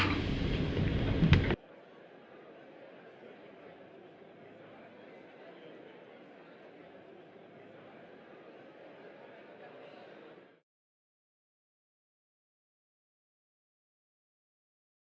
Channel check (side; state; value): both; identical; correlation 1.00